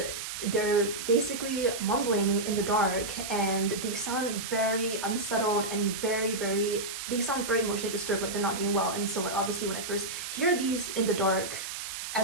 they're basically mumbling in the dark, and they sound very unsettled and they sound very emotionally disturbed, like they're not doing well. And so like, obviously when I first hear these in the dark,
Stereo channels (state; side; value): noise; right; hiss, 7 dB below the sound